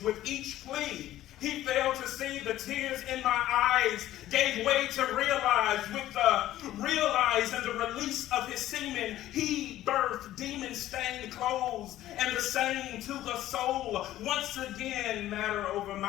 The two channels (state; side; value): quieter; right; 13.9 dB